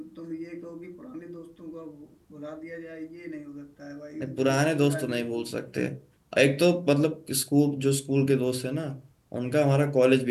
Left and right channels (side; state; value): both; identical; correlation 1.00